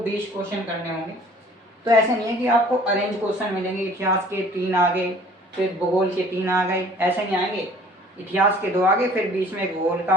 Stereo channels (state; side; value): normal; both; correlation 0.52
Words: क्वेश्चन करने होंगे। तो ऐसे नहीं है कि आपको अरेंज क्वेश्चन मिलेंगे, इतिहास के 3 आ गए, फिर भूगोल के 3 आ गए, ऐसे नहीं आएंगे। इतिहास के 2 आ गए, फिर बीच में भूगोल का